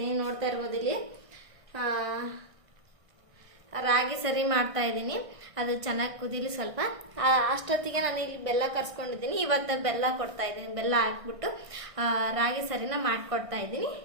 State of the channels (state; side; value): late; left; 1.6 ms